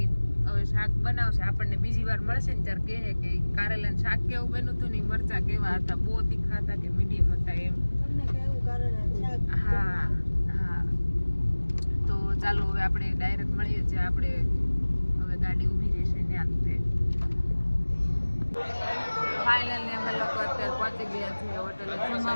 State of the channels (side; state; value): both; inverted; correlation -1.00